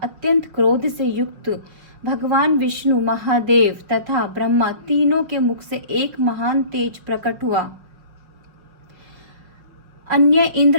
अत्यंत क्रोध से युक्त भगवान विष्णु, महादेव तथा ब्रह्मा तीनों के मुख से एक महान तेज प्रकट हुआ। अन्य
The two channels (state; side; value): late; left; 5.5 ms